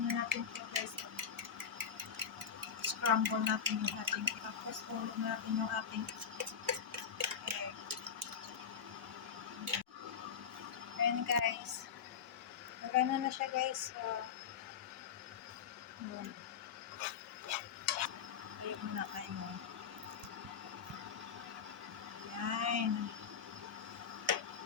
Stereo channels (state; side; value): quieter; right; 7.2 dB